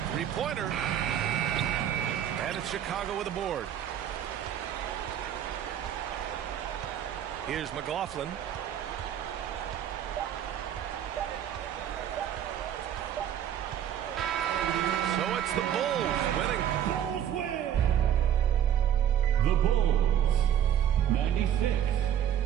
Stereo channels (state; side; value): quieter; left; 10.1 dB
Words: Three-pointer. And it's Chicago with a board. Here's McLaughlin. So it's the Bulls winning. Bulls win! The Bulls, 96.